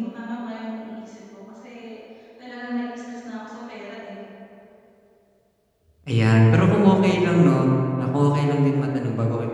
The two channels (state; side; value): identical; both; correlation 1.00